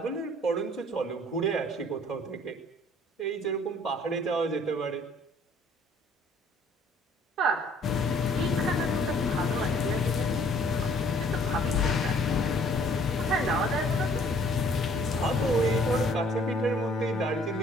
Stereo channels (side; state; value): both; normal; correlation 0.58